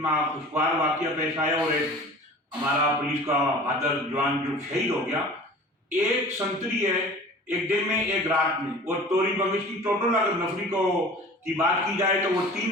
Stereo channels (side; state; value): both; normal; correlation 0.42